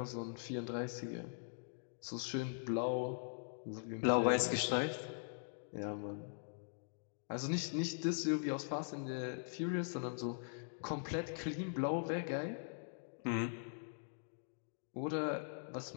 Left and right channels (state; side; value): silent; right; digital silence